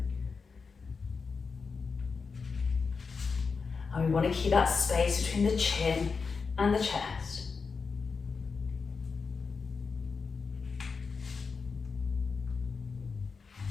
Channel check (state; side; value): quieter; right; 5.0 dB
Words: And we want to keep that space between the chin and the chest.